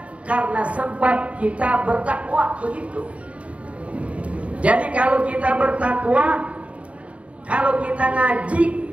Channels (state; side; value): late; left; 0.064 ms